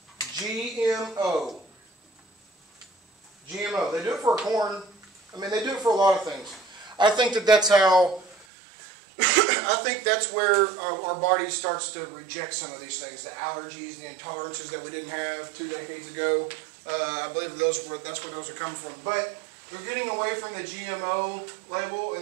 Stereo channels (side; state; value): left; drops out; at 8.5 s